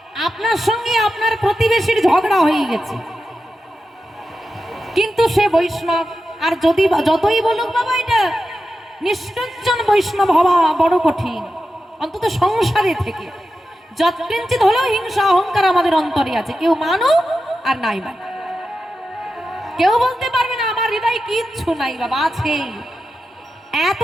আপনার সঙ্গে আপনার প্রতিবেশীর ঝগড়া হয়ে গেছে, কিন্তু সে বৈষ্ণব, আর যদি যতই বলুক বাবা এটা নিষ্ঠুরজন বৈষ্ণব হওয়া বড় কঠিন, অন্তত সংসারে থেকে যৎকিঞ্চিত হলেও হিংসা অহংকার আমাদের অন্তরে আছে, কেউ মানুক আর নাই মানে, কেউ বলতে পারবে না আমার হৃদয়ে কিচ্ছু নাই, বাবা আছে।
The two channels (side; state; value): both; normal; correlation 0.91